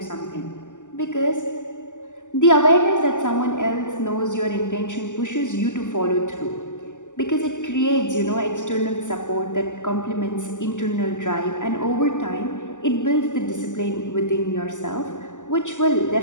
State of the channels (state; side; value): late; right; 0.86 ms